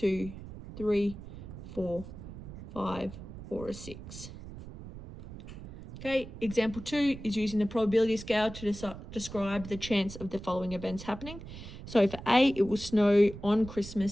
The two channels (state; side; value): noise; right; rumble, 13 dB below the sound